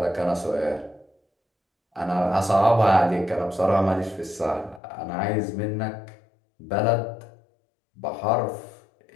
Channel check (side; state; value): right; drops out; at 4.8 s